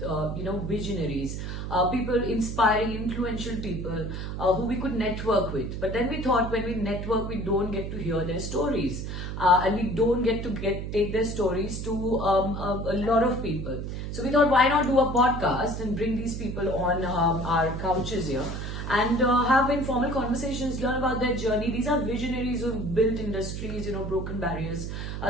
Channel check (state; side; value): noise; right; hum, 5 dB below the sound